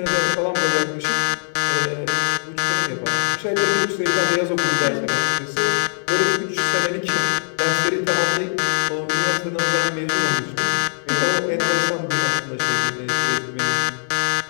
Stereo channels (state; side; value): silent; right; digital silence